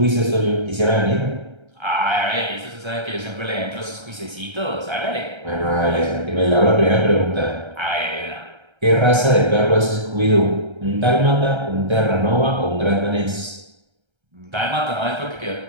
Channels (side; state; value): left; late; 1.3 ms